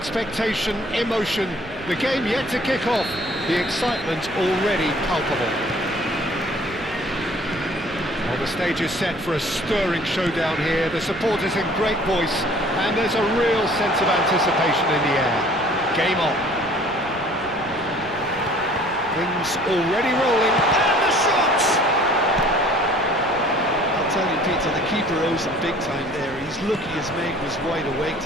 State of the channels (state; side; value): noise; right; rumble, 18 dB below the sound